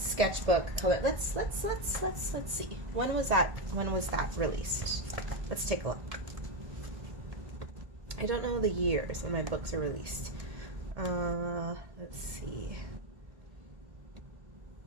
color. Let's see. When was that released? Let's take a look. I don't know the years when my books are released. Let's see.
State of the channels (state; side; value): late; left; 1.8 ms